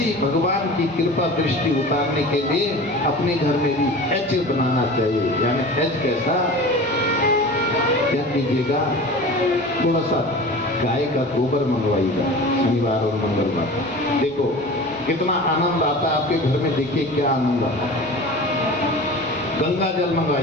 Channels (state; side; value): noise; right; rumble, 29 dB below the sound